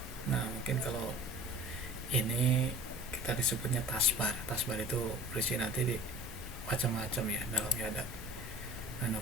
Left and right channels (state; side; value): normal; both; correlation 0.43